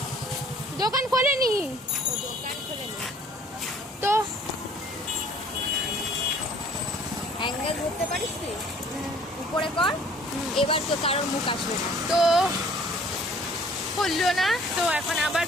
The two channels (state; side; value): normal; both; correlation 0.55